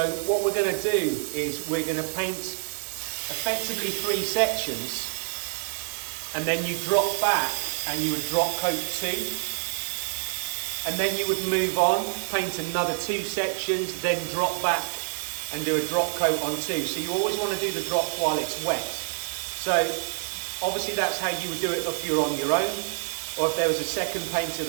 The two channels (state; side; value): silent; left; 56 dB below the other